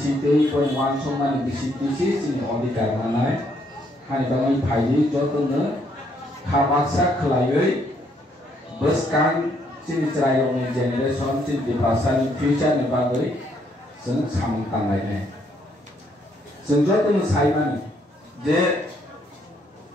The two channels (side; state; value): both; normal; correlation 0.70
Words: ko wan somani bisite sini odikar manai hani bangi phayi jotone khabaksa khlaioi beskan sini cerai ni generation sini ti prasani future ne bagoi seng samang tangai ne Senjata itu saya je